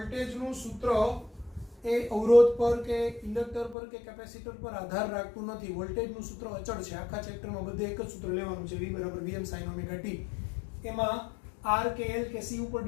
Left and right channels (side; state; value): right; drops out; at 3.8 s